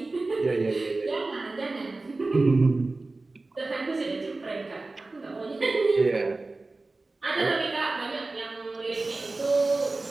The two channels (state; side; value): quieter; left; 3.3 dB